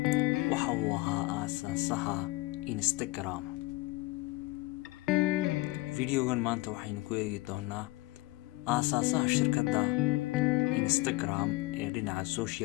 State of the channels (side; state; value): right; quieter; 20.9 dB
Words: waxa uu ahaa aasaasaha Instagram. Videogan maanta waxaynu ku eegi doonaa aasaasaha shirkadda Instagram ee dhinaca